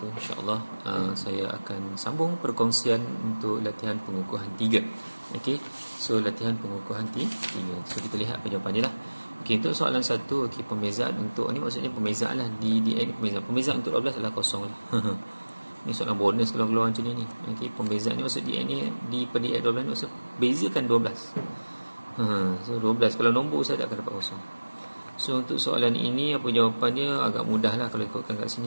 InsyaAllah saya akan sambung perkongsian untuk latihan pengukuhan 3. Okey. So latihan pengukuhan 3. So kita lihat apa jawapan dia lah. Okey, untuk soalan 1, okey, pembezaan untuk ni maksudnya pembezaan lah di ni pembezaan untuk 12 adalah kosong lah. Ni soalan bonus kalau keluar macam ni. Okey, pembezaan ni maksud DN ni di per DN 12 maksud bezakan 12. So 12 kalau nombor saya tak akan dapat kosong. So untuk soalan ini apa jawapannya agak mudah lah kalau ikutkan kat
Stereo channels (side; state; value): both; inverted; correlation -1.00